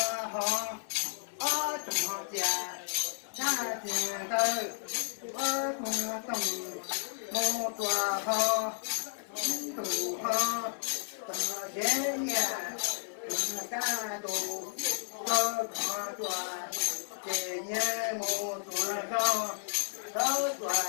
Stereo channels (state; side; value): silent; right; 56 dB below the other